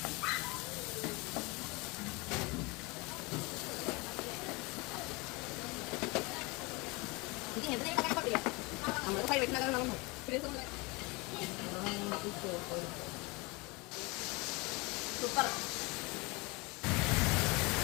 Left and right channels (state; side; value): quieter; right; 26.5 dB